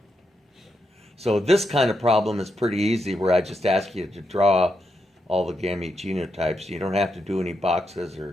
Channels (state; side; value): normal; both; correlation 0.83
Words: So this kind of problem is pretty easy, where I just ask you to draw all the gamete genotypes. You don't have to do any boxes